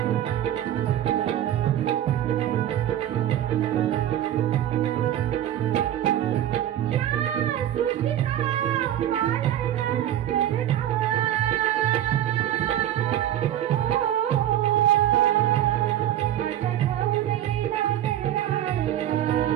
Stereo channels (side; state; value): left; quieter; 11.8 dB